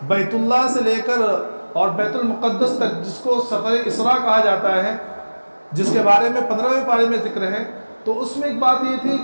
بیت اللہ سے لے کر اور بیت المقدس تک، جس کو سفر اسراء کہا جاتا ہے، جس کے بارے میں 15ویں پارے میں ذکر ہے، تو اس میں ایک بات یہ تھی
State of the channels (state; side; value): inverted; both; correlation -1.00